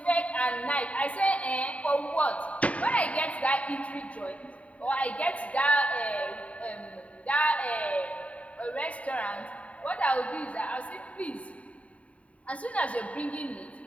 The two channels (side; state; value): right; late; 0.066 ms